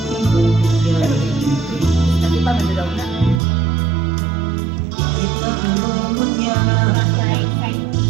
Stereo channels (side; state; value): left; drops out; at 3.4 s